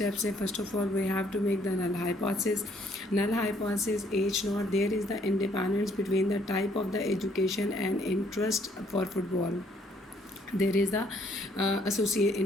हैं। First of all we have to make the null hypothesis. Null hypothesis H not there is the independence between the type of the education and interest for football. There is the associate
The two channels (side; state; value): both; normal; correlation 0.65